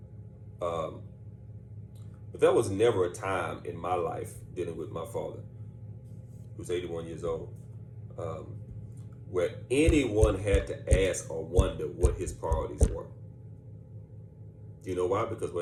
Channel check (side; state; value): both; identical; correlation 1.00